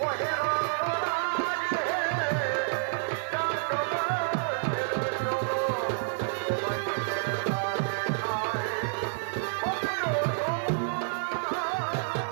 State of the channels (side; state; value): left; silent; 59 dB below the other